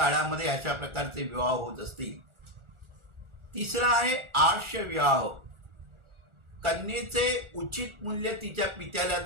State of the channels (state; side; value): late; left; 1.4 ms